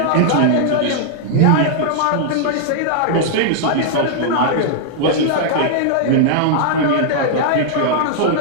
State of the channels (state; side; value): different; both; correlation -0.01